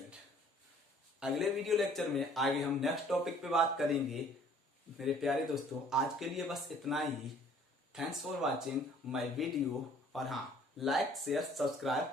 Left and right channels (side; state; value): both; normal; correlation 0.56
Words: अगले वीडियो लेक्चर में आगे हम नेक्स्ट टॉपिक पे बात करेंगे। मेरे प्यारे दोस्तों, आज के लिए बस इतना ही। Thanks for watching my video. और हाँ, like share